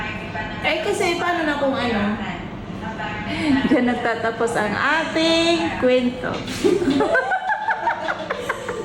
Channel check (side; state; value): both; identical; correlation 1.00